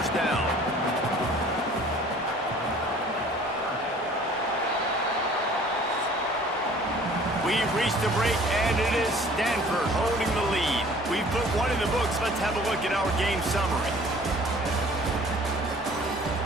down. We've reached the break, and it is Stanford holding the lead. We've put one in the books. Let's have a look at our game summary.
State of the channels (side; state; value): both; normal; correlation 0.51